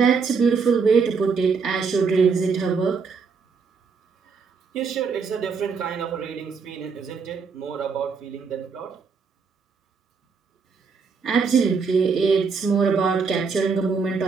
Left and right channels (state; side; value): quieter; left; 5.2 dB